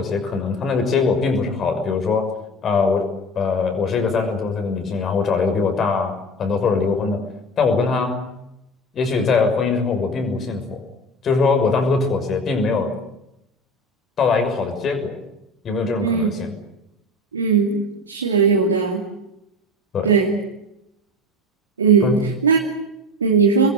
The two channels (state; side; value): normal; both; correlation 0.30